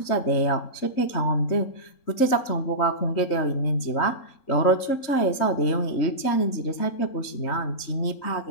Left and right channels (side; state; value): right; late; 3.8 ms